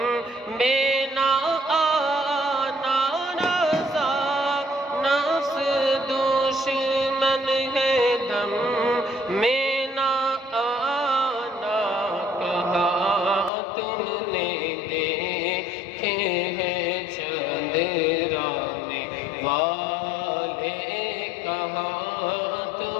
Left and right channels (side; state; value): right; drops out; at 13.5 s